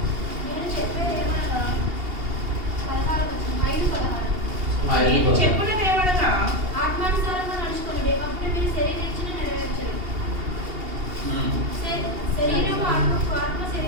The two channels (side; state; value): left; late; 2.8 ms